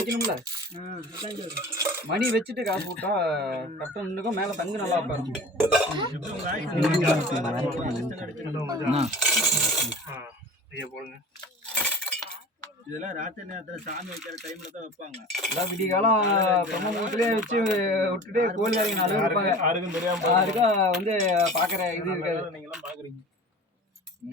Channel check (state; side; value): normal; both; correlation 0.38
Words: மணி வச்சுட்டு காசு போட்டா கரெக்டாக நின்றுக்கும், மேலே தங்கு நல்லா உட்காரும். இதெல்லாம் ராத்திரி நேரத்தில் சாமி வைக்கிற டைம்ல தான் வைப்பாங்க. எல்லாம் விடிய காலம் பிரம்ம முகத்திலே வச்சு விட்டுட்டு கோழி இறங்கி நாலு இருப்பாங்க. யாருக்கா வந்து பார்க்குற இது இருக்காது. நீங்களாம் பார்க்குறீங்க.